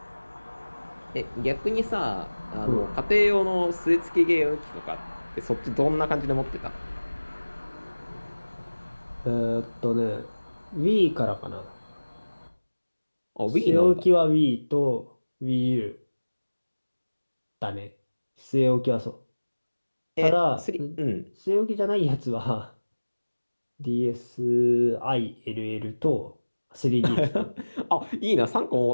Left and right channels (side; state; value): both; inverted; correlation -1.00